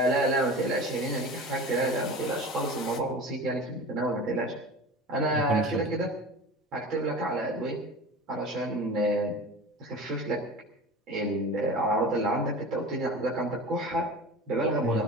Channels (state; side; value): normal; both; correlation 0.34